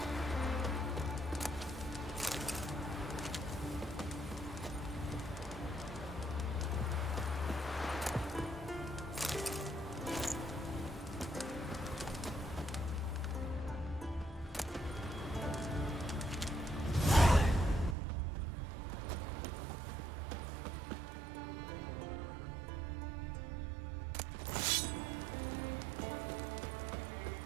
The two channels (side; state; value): left; drops out; at 17.9 s